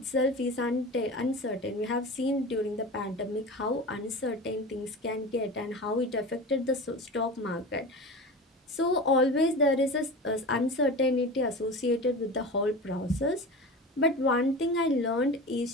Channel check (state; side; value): normal; both; correlation 0.30